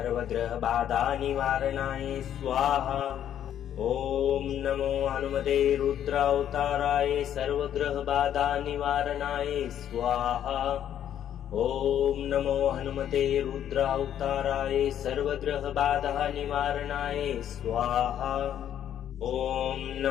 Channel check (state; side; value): quieter; right; 10.3 dB